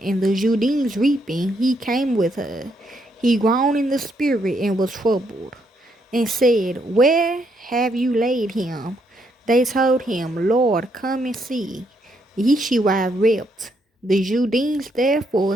the Judeans reaping, he came with her. He groaned in the spirit and was troubled, and said, Where have you laid him? They told him, Lord, come and see. Yeshua wept. The Judeans therefore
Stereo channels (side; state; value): both; normal; correlation 0.75